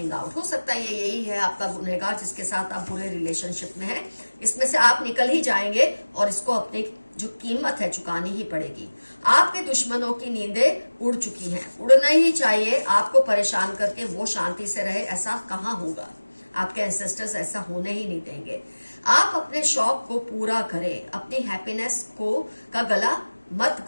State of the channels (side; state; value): both; inverted; correlation -1.00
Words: out. हो सकता है ये यही है आपका गुनहगार जिसके साथ आप बुरे रिलेशनशिप में हैं। इसमें से आप निकल ही जाएंगे और इसको अपनी जो कीमत है चुकानी ही पड़ेगी। आपके दुश्मनों की नींदें उड़ चुकी हैं, उड़ना ही चाहिए। आपको परेशान करके वो शांति से रहे, ऐसा कहाँ होगा। आपके एंसेस्टर्स ऐसा होने ही नहीं देंगे। आप अपने शौक को पूरा करें, अपनी हैप्पीनेस का गला मत